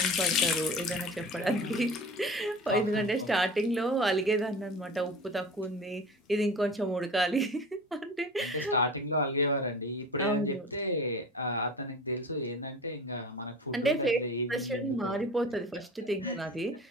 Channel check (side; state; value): both; normal; correlation 0.36